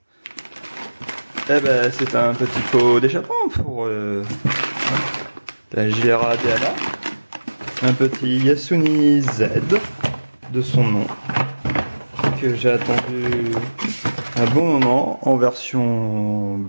Eh ben, c'est un petit pot d'échappement pour la JRA Dana. Un petit Yasuni Z de son nom que j'ai attendu un bon moment en version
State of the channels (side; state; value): both; inverted; correlation -1.00